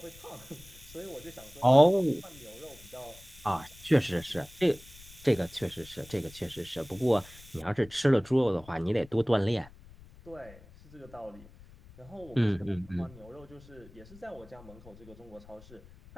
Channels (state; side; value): noise; left; rumble, 21 dB below the sound